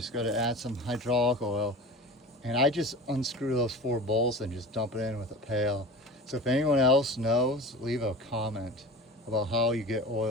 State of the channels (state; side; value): normal; both; correlation 0.34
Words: got to add some hydraulic oil. And I just unscrew those 4 bolts and just dump it in with a pail. So if anyone else knows, leave a comment about how you get